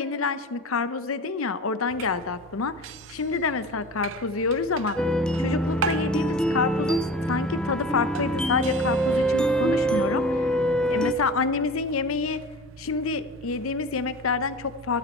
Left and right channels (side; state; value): both; normal; correlation 0.35